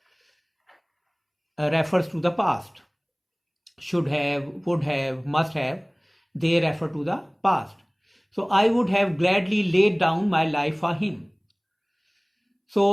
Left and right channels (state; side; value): identical; both; correlation 1.00